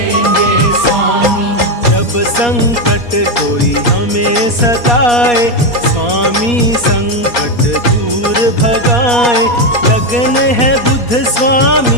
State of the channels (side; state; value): right; late; 4.2 ms